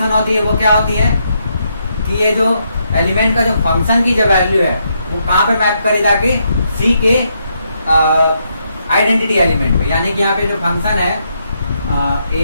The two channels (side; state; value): both; inverted; correlation -0.78